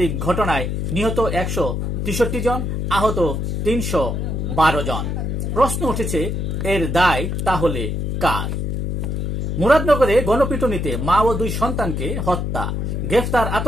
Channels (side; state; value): left; noise; hum, 1 dB below the sound